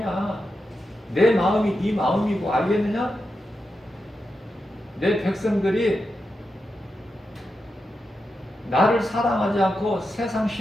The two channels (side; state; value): both; normal; correlation 0.88